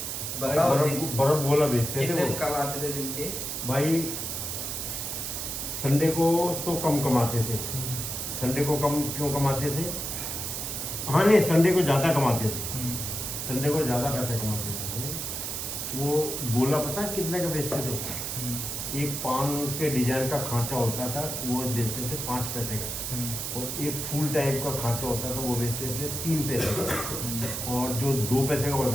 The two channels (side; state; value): right; noise; hiss, 4 dB below the sound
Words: भाई बताओ बर्फ गोला बेचते थे कितने वो। कमाते थे दिन के? भाई संडे को तो कम कमाते थे। संडे को कम क्यों कमाते थे? हाँ नहीं, संडे को ज़्यादा कमाते थे। संडे को ज़्यादा पैसे कमाते थे। वो गोला पता है कितने का बेचते थे? एक पान के डिजाइन का खांचा होता था, वो बेचते थे 5 पैसे का। और एक फुल टाइप का खांचा होता था, वो बेचते थे 3 पैसे का। और जो 2 पैसे का